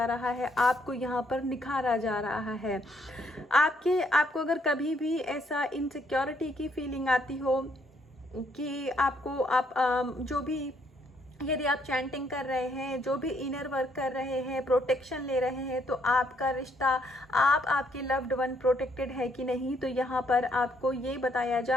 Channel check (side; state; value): both; normal; correlation 0.70